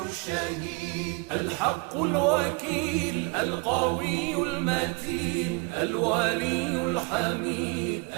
الشهيد الحق الوكيل القوي المتين الولي الحميد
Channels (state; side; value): quieter; left; 29.5 dB